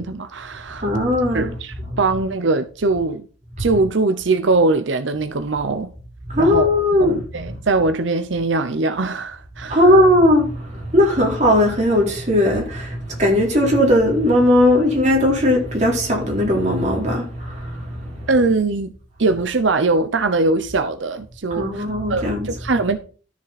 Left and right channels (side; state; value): both; normal; correlation 0.31